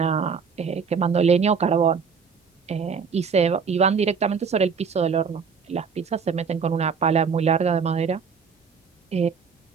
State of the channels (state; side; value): quieter; left; 5.9 dB